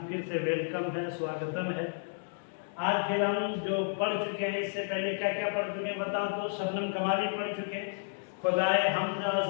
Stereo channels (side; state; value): right; silent; digital silence